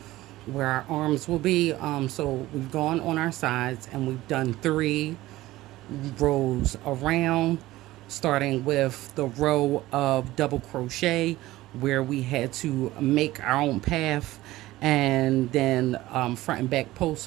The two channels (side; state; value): left; quieter; 17.1 dB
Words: where our arms will be. So we've gone on our sides and we've done 3 rows around, starting with the row of double crochet where we had to make our own path, and then front and back